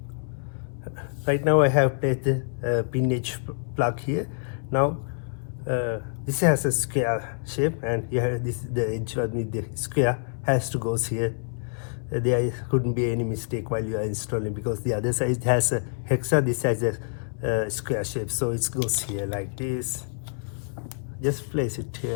Right now I have placed the pin edge plug here. Now this has a square shape, and you have the edge with the square has to go here. There couldn't be any mistake while you are installing, because the other side has a hexa, this has a square shape, so it goes here like this. Just place it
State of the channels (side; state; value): right; silent; 60 dB below the other